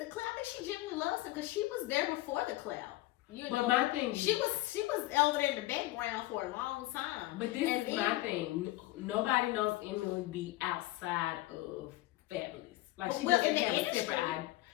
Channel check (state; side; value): quieter; right; 17.9 dB